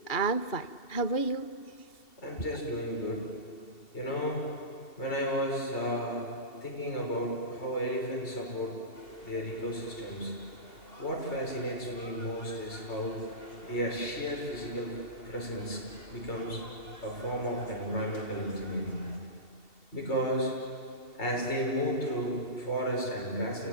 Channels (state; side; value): late; right; 2.7 ms